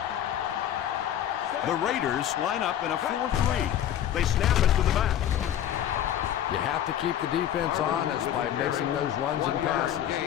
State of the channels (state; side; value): quieter; right; 10.7 dB